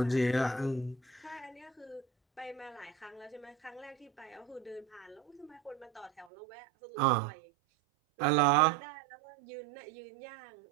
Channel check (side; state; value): left; drops out; at 6.2 s